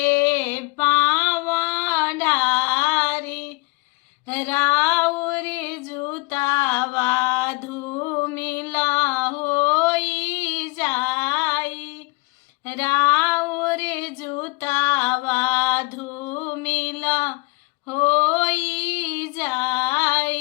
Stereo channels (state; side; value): quieter; right; 27.4 dB